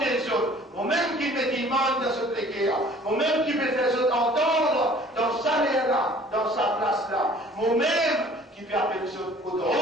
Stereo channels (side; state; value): both; normal; correlation 0.52